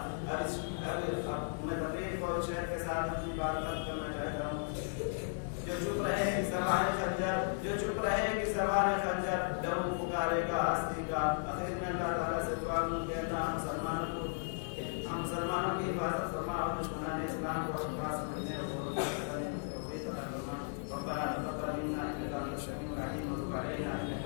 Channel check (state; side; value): silent; right; digital silence